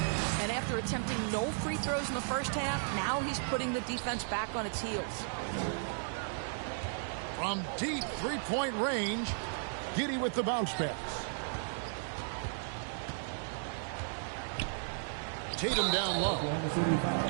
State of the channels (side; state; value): left; silent; digital silence